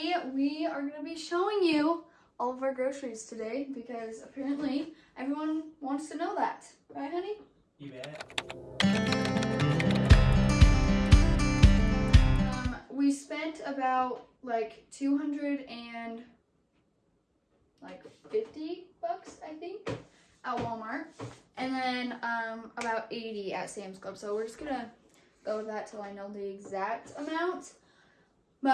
we are going to be showing you all of our groceries today because apparently everyone wants to know that. Right, honey? You bet. We spent about like $250, I think, at Walmart, and then about $80 at Sam's Club. So we're just gonna go with that till I know the exact amount.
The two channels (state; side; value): identical; both; correlation 1.00